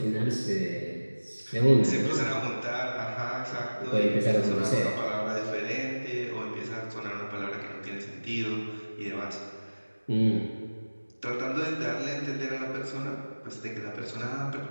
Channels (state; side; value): inverted; both; correlation -1.00